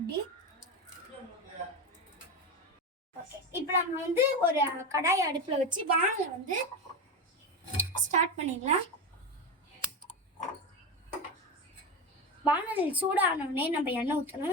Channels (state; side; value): normal; both; correlation 0.17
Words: இப்போ நம்ம வந்து ஒரு கடாய் அடுப்புல வச்சு வானலை வந்து ஸ்டார்ட் பண்ணிடலாம். வானலில் சூடானோடனே நம்ம எண்ணெய்